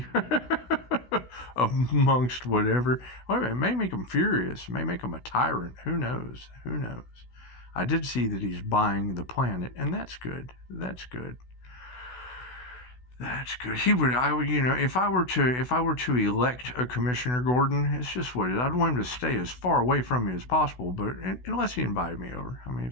amongst whatever, well, it may make them furious, it may make them a tyrant. Who knows? I did see that he's buying the planet, and that's good. That's good. That's good. He would, I would, if I were to elect a Commissioner Gordon, it's just what it is. I'd want him to stay as far away from me as possible, but unless he invited me over. I mean,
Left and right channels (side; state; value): right; late; 16 ms